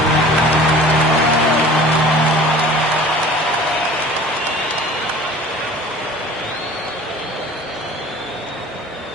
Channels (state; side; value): normal; both; correlation 0.45